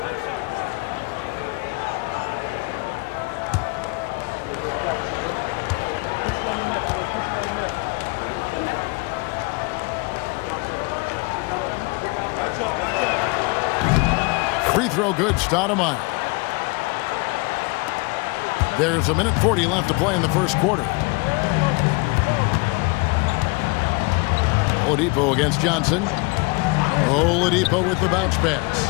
Free throw good, Stoudemire. There's a minute 40 left to play in the first quarter. Oladipo against Johnson. Oladipo with the bounce pass.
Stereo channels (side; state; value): right; quieter; 28.4 dB